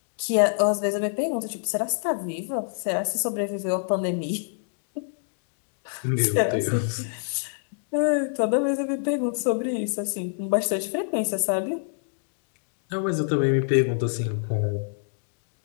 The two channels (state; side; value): silent; right; digital silence